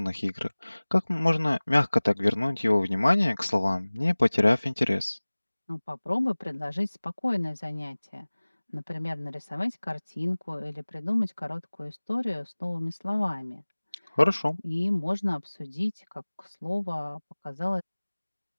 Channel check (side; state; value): both; inverted; correlation -1.00